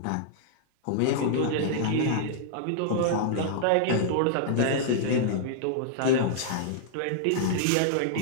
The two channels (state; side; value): different; both; correlation -0.01